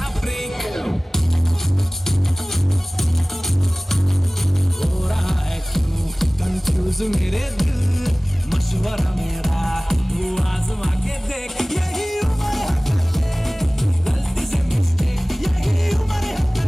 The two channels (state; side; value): normal; both; correlation 0.98